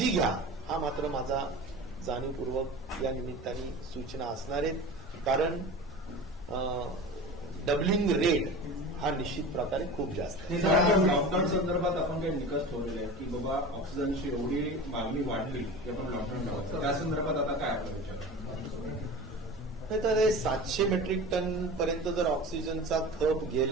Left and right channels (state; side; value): normal; both; correlation 0.34